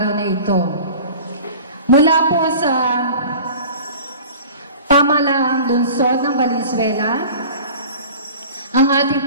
na ito. Mula po sa pamahalaang lungsod ng Valenzuela, ang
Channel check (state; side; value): inverted; both; correlation -0.41